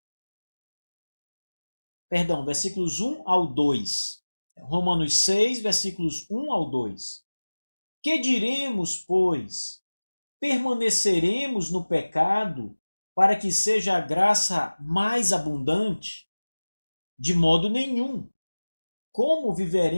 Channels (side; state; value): both; inverted; correlation -1.00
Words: Perdão, versículos 1 ao 2. Romanos 6, versículos 1 ao 2. Que diremos, pois? Permaneceremos no pecado para que seja a graça mais abundante? De modo nenhum. Como